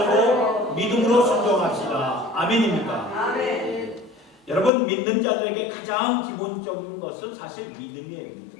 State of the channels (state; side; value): drops out; right; at 4.7 s